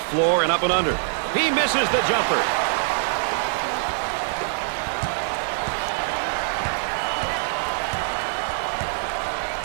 floor and up and under. He misses the jumper.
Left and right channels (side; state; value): left; silent; 56 dB below the other